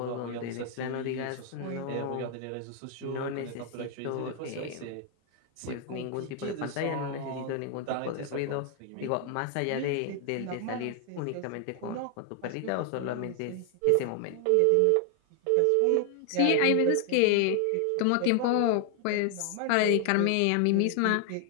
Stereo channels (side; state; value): both; different; correlation 0.00